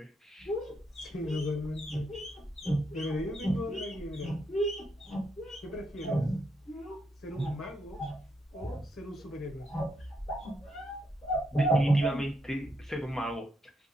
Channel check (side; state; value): both; normal; correlation 0.78